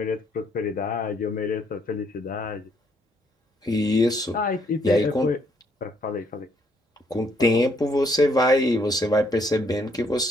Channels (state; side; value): normal; both; correlation 0.70